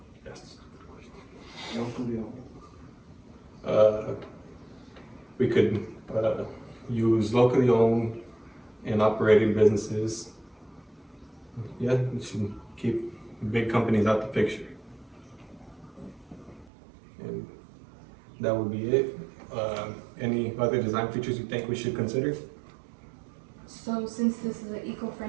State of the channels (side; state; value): left; drops out; at 16.7 s